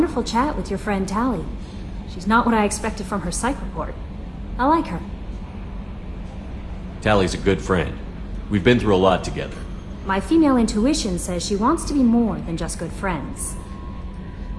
chat with your friend Tali. She's not what I expected from her psych report. I like her. Tali's a good friend. We've been through a lot together. My female intuition says she wants to be more than just good friends.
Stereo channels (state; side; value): identical; both; correlation 1.00